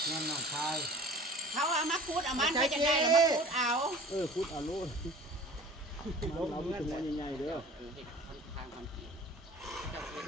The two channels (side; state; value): both; normal; correlation 0.43